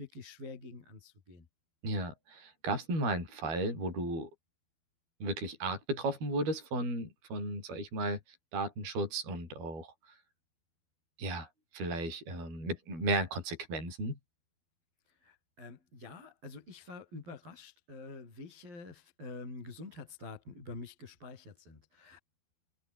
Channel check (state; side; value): late; left; 12 ms